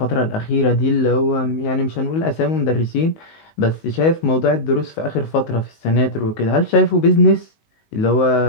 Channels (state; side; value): late; right; 19 ms